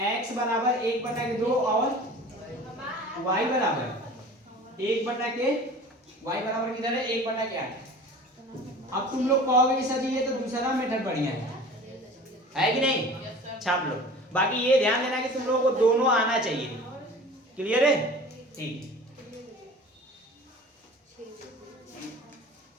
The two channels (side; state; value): both; normal; correlation 0.41